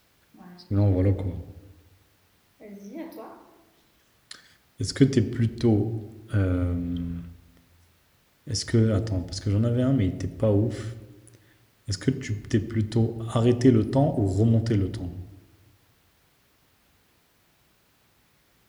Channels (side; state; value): both; identical; correlation 1.00